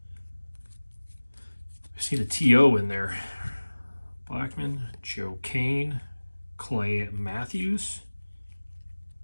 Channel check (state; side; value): inverted; both; correlation -1.00